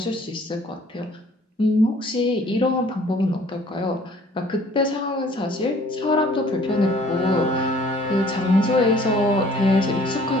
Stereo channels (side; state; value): both; normal; correlation 0.55